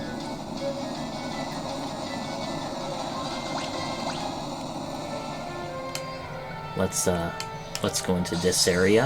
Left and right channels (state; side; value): identical; both; correlation 1.00